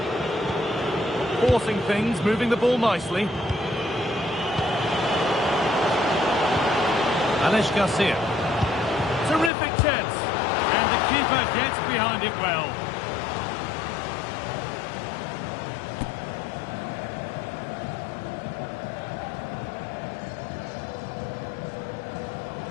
Forcing things, moving the ball nicely. Garcia. Terrific chance. And the keeper gets behind it well.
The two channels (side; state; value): right; drops out; at 9.5 s